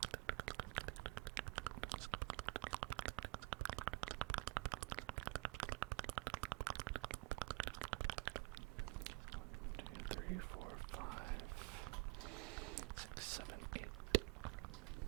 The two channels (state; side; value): quieter; left; 23.7 dB